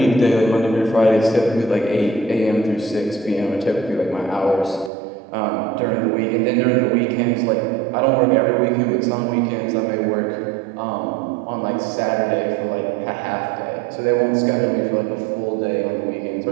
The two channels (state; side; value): drops out; left; at 4.9 s